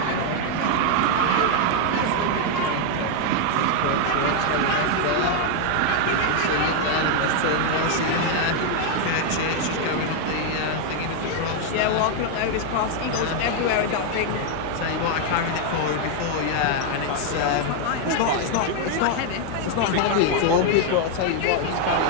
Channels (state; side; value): different; both; correlation 0.00